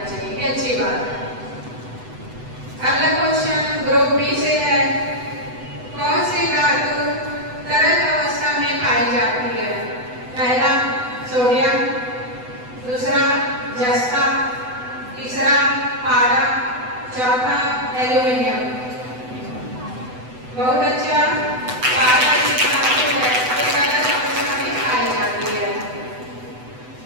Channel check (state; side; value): late; left; 8.0 ms